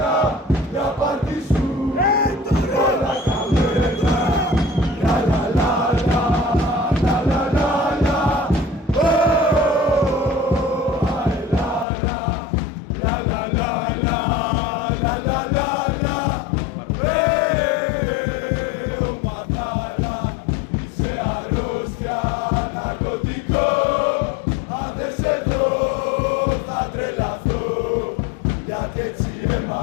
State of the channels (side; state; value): right; drops out; at 11.9 s